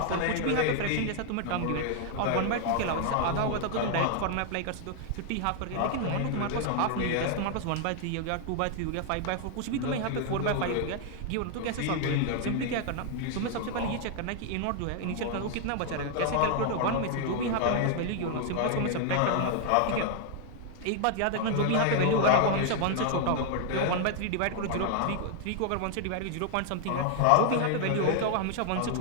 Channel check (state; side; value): different; both; correlation 0.00